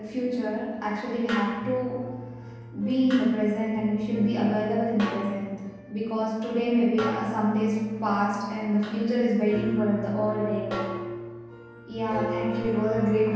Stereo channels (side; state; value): both; identical; correlation 1.00